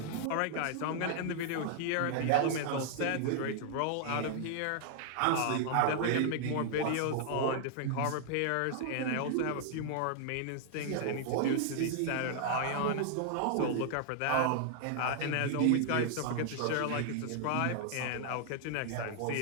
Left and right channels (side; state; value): both; different; correlation 0.00